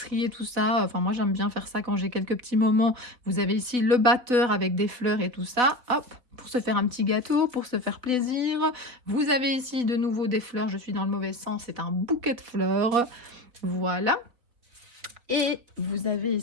et tout ça. Enfin moi j'aime bien faire ça quand j'ai quelques petits moments. Vous avez ici le batteur avec des fleurs et tout ça. Hop, pour se faire un petit gâteau, pour se faire plaisir. Vous avez ici de nouveau des fleurs, je suis dans le mauvais sens, c'est un bouquet de fleurs. Voilà. Et vous avez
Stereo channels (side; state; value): left; late; 3.8 ms